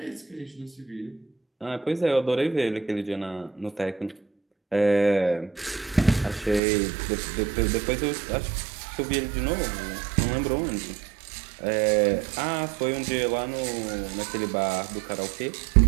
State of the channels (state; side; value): drops out; left; at 6.6 s